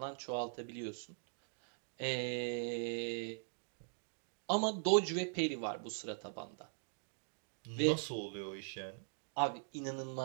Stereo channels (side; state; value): left; silent; digital silence